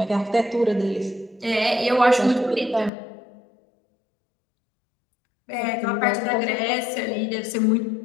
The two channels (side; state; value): right; drops out; at 2.9 s